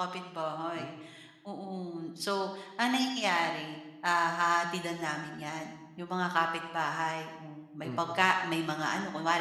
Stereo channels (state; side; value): identical; both; correlation 1.00